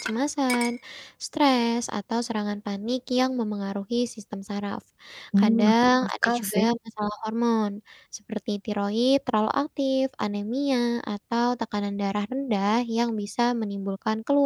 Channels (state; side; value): identical; both; correlation 1.00